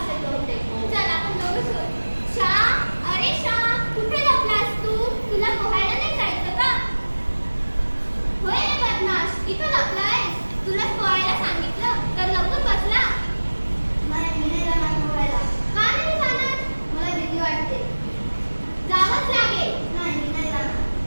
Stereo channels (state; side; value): inverted; both; correlation -1.00